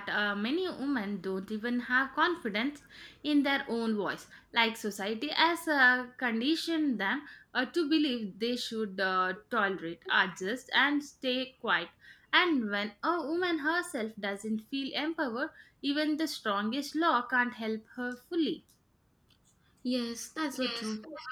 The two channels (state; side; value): identical; both; correlation 1.00